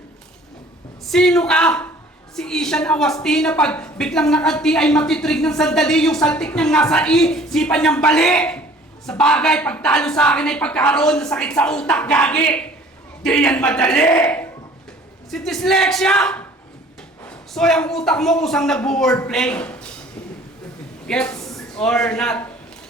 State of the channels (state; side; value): normal; both; correlation 0.51